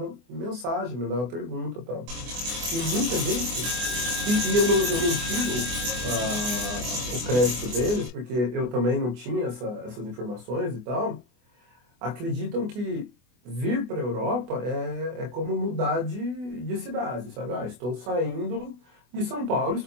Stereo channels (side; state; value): left; late; 24 ms